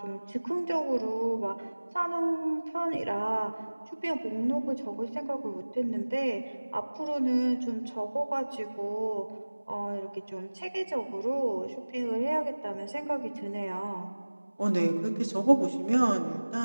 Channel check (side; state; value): both; inverted; correlation -1.00